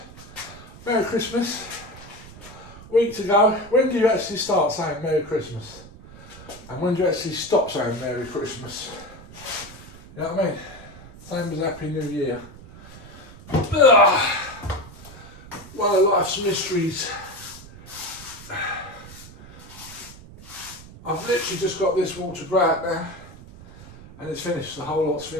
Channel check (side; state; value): right; noise; rumble, 18 dB below the sound